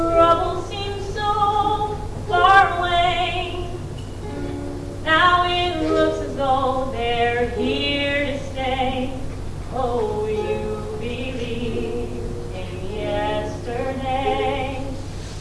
seem so far away. Now it looks as though they're here to stay. Oh, you believe in yesterday.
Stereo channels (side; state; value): both; identical; correlation 1.00